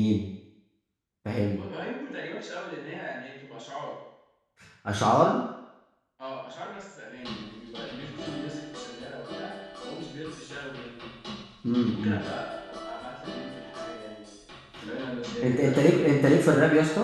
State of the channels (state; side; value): identical; both; correlation 1.00